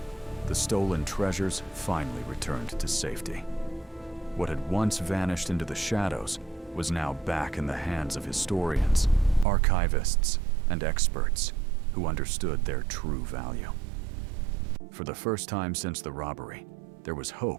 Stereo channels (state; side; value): drops out; left; at 9.5 s